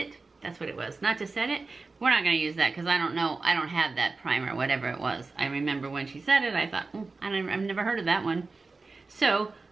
That's what it was, not to set it. We're not gonna use that because I don't know, I don't have that primer, whatever it was. I remember when she said it, I thought, I've never heard of that one. So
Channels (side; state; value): left; quieter; 3.9 dB